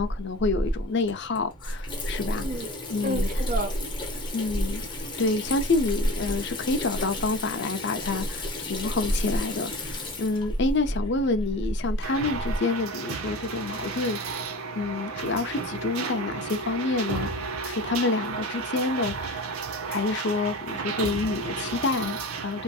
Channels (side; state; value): both; normal; correlation 0.34